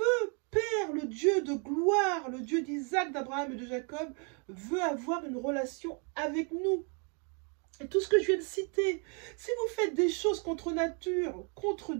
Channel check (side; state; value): left; quieter; 37.6 dB